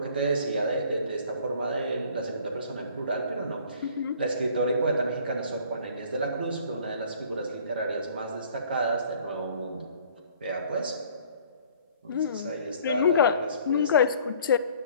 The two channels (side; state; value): both; inverted; correlation -0.54